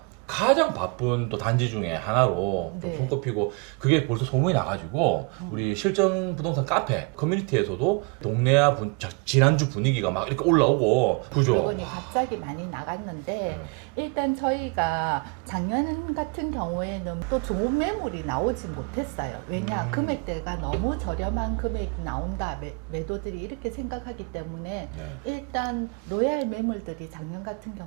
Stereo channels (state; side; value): quieter; left; 32.0 dB